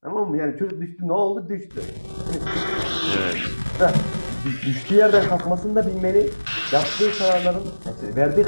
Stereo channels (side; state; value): both; inverted; correlation -1.00